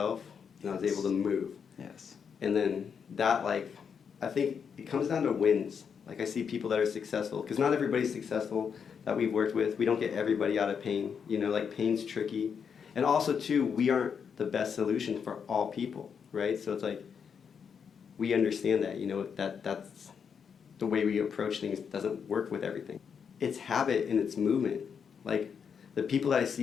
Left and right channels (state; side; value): quieter; right; 6.8 dB